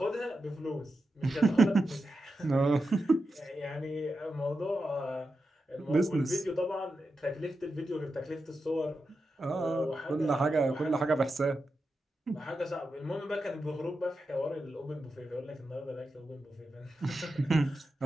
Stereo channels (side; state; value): both; normal; correlation 0.89